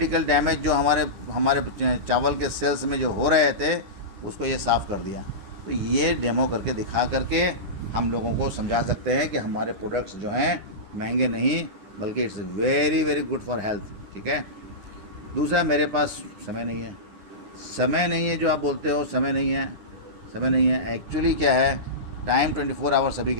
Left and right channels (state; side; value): late; left; 10 ms